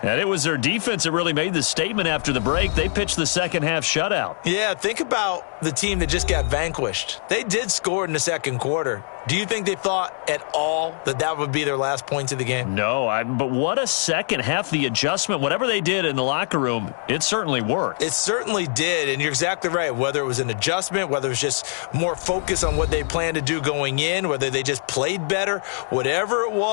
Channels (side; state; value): right; silent; 60 dB below the other